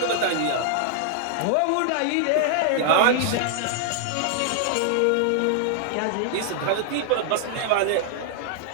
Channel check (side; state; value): both; different; correlation -0.01